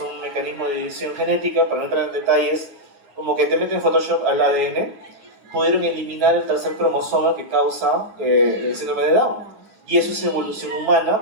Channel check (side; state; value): left; late; 9.7 ms